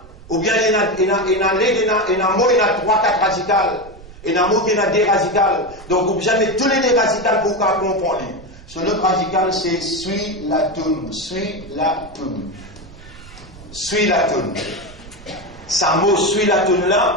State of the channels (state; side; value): noise; right; rumble, 19 dB below the sound